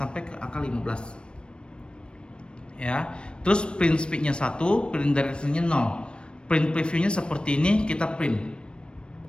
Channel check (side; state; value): right; late; 0.055 ms